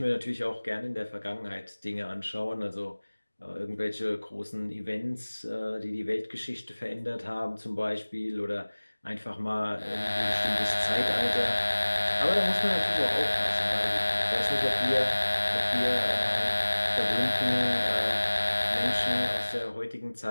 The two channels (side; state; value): both; inverted; correlation -1.00